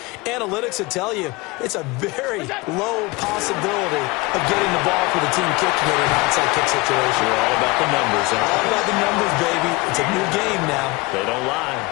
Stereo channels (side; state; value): right; quieter; 23.8 dB